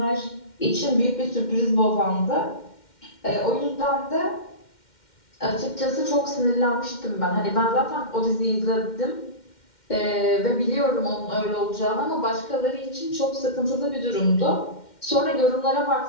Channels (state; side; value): late; right; 2.1 ms